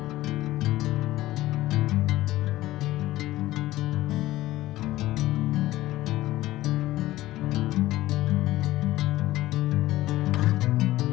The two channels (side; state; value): right; quieter; 16.2 dB